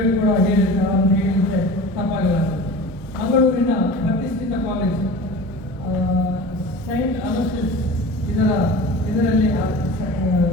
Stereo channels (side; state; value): both; normal; correlation 0.36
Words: ಕೂಡ ಹೇಳಿರ್ತಾರೆ ಅಂತ ಹೇಳಿದರೆ ತಪ್ಪಾಗಲ್ಲ. ಮಂಗಳೂರಿನ ಪ್ರತಿಷ್ಠಿತ ಕಾಲೇಜ್ ಸೈಂಟ್ ಅಲೋಸಿಸ್ ಇದರಲ್ಲಿ